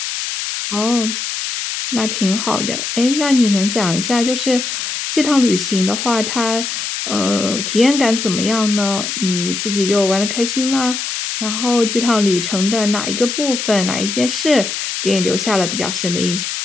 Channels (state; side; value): noise; left; hiss, 4 dB below the sound